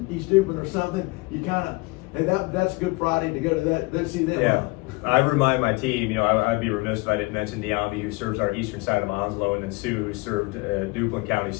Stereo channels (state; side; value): quieter; right; 25.5 dB